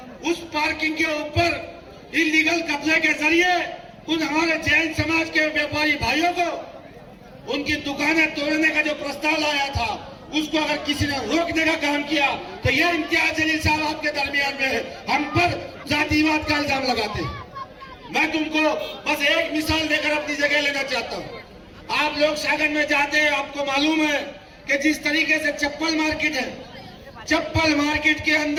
उस पार्किंग के ऊपर इलीगल कब्जे के जरिए उन हमारे जैन समाज के व्यापारी भाइयों को उनकी दुकानें तोड़ने का जो प्रस्ताव लाया था उसको अगर किसी ने रोकने का काम किया तो ये इम्तियाज जलील साहब आपके दरमियान में हम पर जातिवाद का इल्जाम लगाते हैं। मैं तुमको बस एक मिसाल देकर अपनी जगह लेना चाहता हूँ। आप लोग सागर में जाते हैं, आपको मालूम है कि जिस तरीके से चप्पल मार्केट है, चप्पल मार्केट के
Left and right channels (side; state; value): both; identical; correlation 1.00